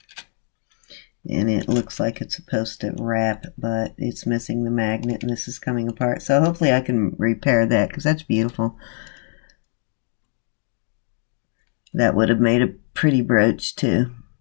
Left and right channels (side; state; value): right; silent; 55 dB below the other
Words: And it looks like it's supposed to wrap, but it's missing the magnet, and this is coming apart. So hopefully I can repair that, because that's beautiful. That would have made a pretty brooch too.